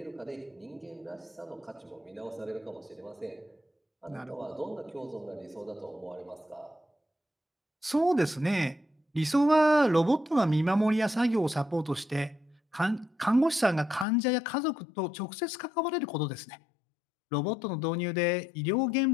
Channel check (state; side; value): drops out; right; at 14.1 s